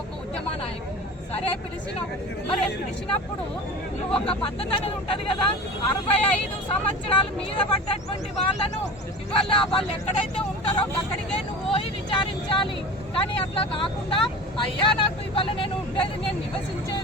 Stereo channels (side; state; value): both; normal; correlation 0.34